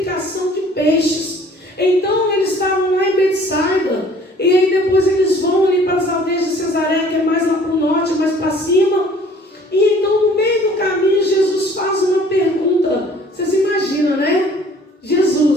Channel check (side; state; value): both; normal; correlation 0.53